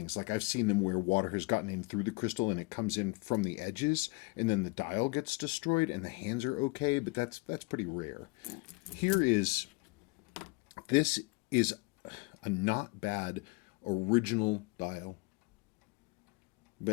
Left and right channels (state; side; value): quieter; right; 26.8 dB